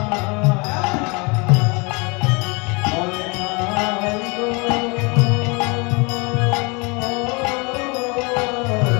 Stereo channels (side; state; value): right; quieter; 28.9 dB